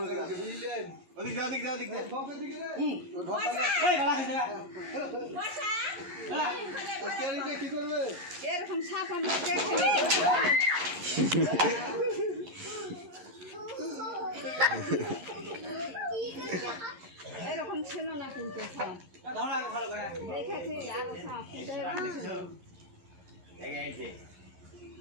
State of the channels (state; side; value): late; left; 11 ms